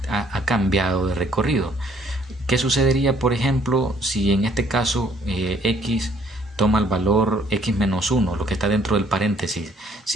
ha cambiado de recorrido. ¿Qué sucedería, por ejemplo, si en este caso x toma el valor x menos 1, lo que está dentro del paréntesis,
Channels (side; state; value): both; normal; correlation 0.63